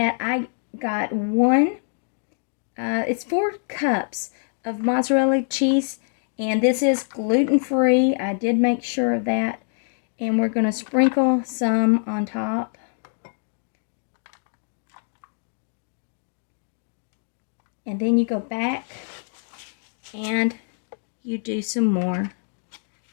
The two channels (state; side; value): silent; right; digital silence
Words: I got it's 4 cups of mozzarella cheese, and this is gluten-free. I did make sure of that. And we're going to sprinkle some on top. And then you go back and you do some more